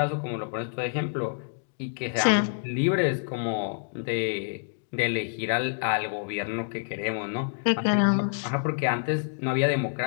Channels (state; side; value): silent; right; digital silence